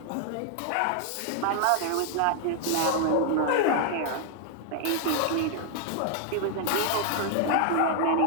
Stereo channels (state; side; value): different; both; correlation 0.00